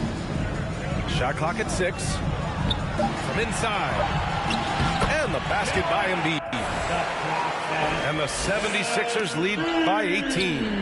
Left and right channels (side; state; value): both; identical; correlation 1.00